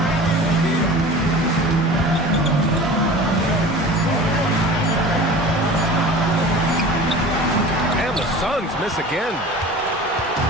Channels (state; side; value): normal; both; correlation 0.38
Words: Suns miss again.